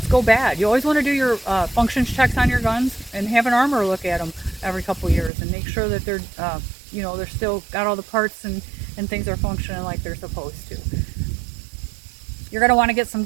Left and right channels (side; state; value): left; drops out; at 5.3 s